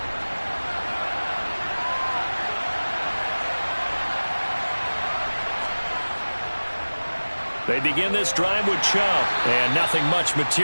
They begin this drive with Chubb. And nothing much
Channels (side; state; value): both; inverted; correlation -1.00